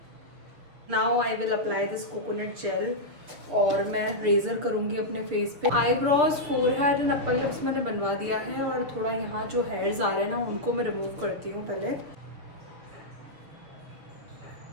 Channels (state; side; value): late; left; 6.9 ms